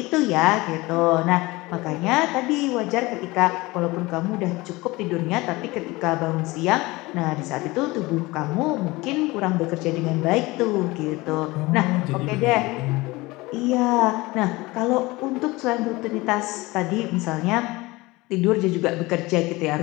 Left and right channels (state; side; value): quieter; right; 21.6 dB